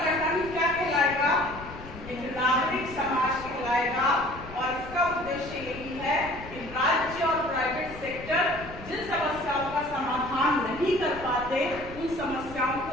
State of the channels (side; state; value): left; noise; rumble, 15 dB below the sound